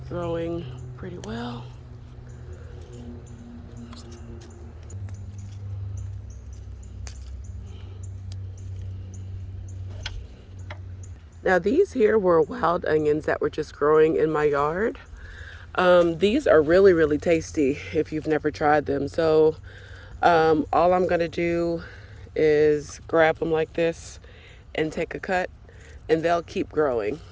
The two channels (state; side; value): identical; both; correlation 1.00